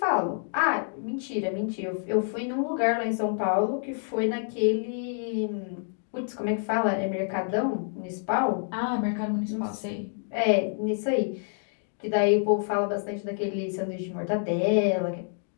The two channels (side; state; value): right; silent; digital silence